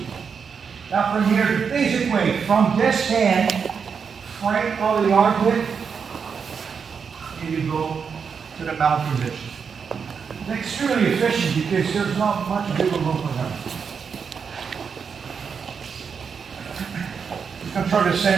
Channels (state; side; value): quieter; left; 6.2 dB